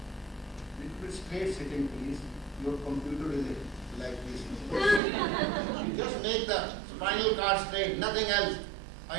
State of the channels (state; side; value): drops out; left; at 5.0 s